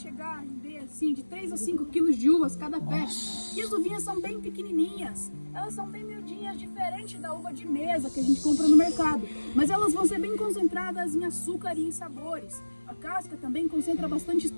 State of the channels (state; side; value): inverted; both; correlation -1.00